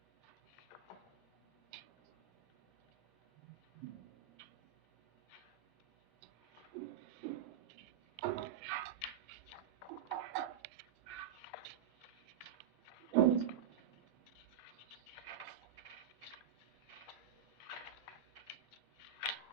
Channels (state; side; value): quieter; left; 9.2 dB